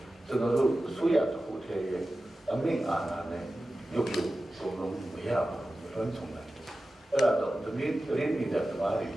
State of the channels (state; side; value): normal; both; correlation 0.94